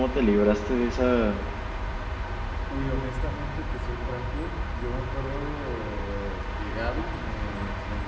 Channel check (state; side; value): identical; both; correlation 1.00